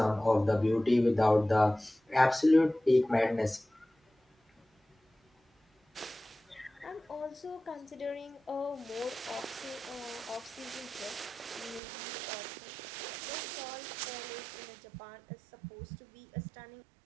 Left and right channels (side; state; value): left; drops out; at 11.8 s